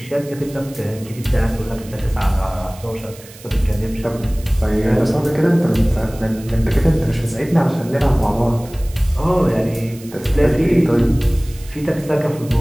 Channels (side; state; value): right; noise; hiss, 20 dB below the sound